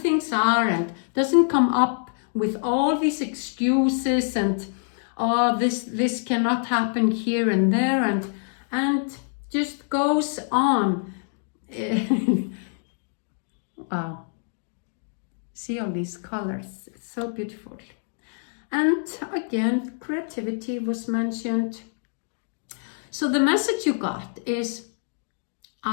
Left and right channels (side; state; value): right; silent; 61 dB below the other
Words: are, and doesn't come up with all these excuses and oh, this cannot happen here and there, and just goes on. Wow. See all these colors, it's so beautiful. And again, creativity was mentioned. So the message you got is,